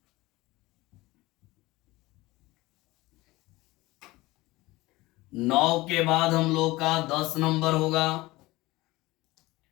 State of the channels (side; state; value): right; quieter; 20.0 dB